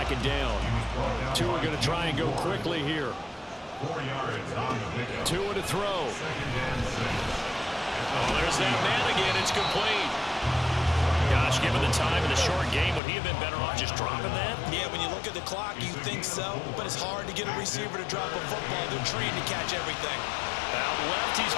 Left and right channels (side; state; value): right; drops out; at 13.0 s